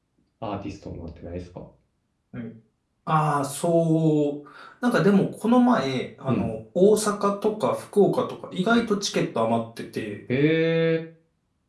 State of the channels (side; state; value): both; identical; correlation 1.00